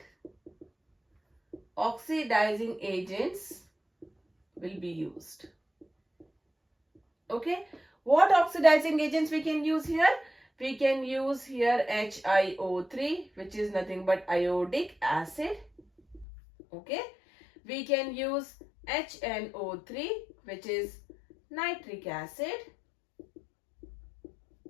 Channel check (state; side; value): drops out; right; at 16.2 s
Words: will be used. Okay. What oxidizing agents we can use here? We can use here HiO3, which is nothing but iodic acid. Okay. We can use HNO3, which is nitric acid.